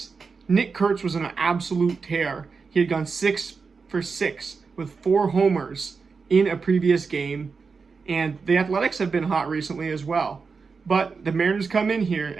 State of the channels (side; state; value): left; quieter; 5.0 dB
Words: Nick Kurtz was on an absolute tear. He had gone 6 for 6 with 4 homers in a previous game. And the Athletics have been hot recently as well. But the Mariners come in here,